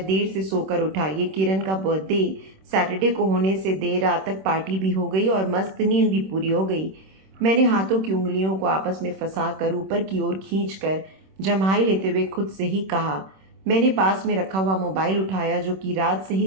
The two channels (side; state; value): left; late; 26 ms